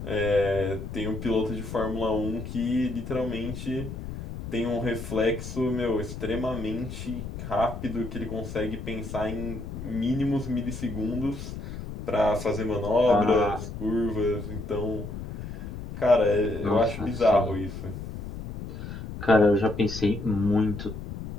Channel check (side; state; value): left; noise; rumble, 8 dB below the sound